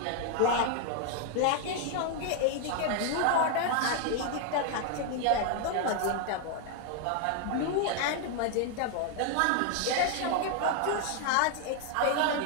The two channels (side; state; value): both; different; correlation 0.00